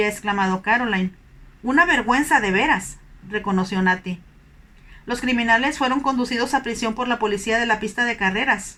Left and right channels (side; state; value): both; identical; correlation 1.00